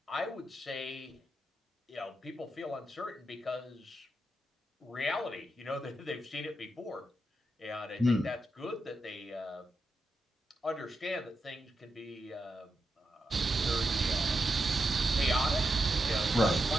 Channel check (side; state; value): both; normal; correlation 0.86